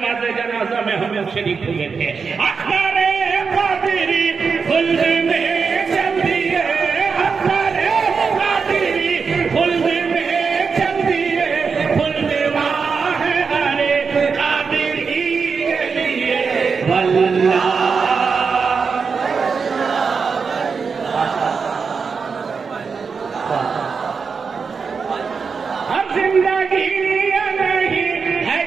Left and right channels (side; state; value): left; quieter; 5.4 dB